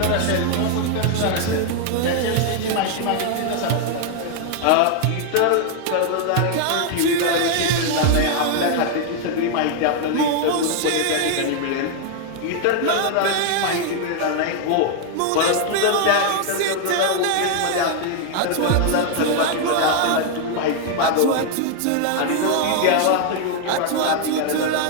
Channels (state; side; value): different; both; correlation 0.00